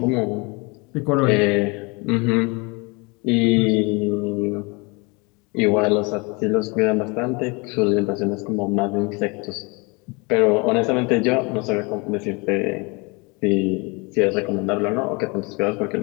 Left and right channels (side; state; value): right; quieter; 28.7 dB